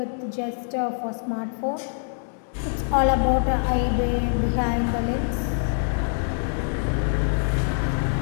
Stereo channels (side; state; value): right; silent; digital silence